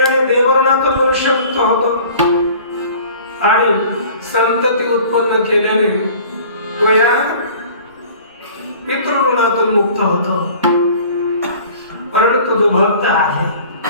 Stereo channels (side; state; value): both; inverted; correlation -0.47